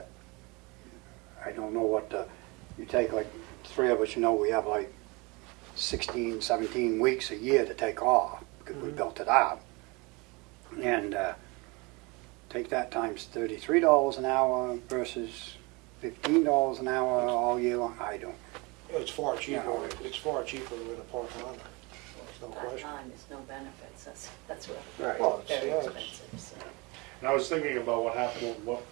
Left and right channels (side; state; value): left; quieter; 27.0 dB